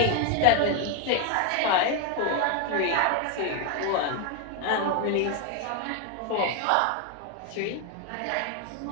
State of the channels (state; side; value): different; both; correlation 0.01